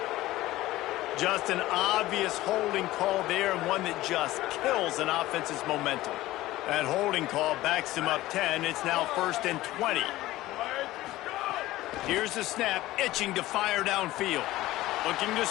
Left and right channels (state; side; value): quieter; right; 16.7 dB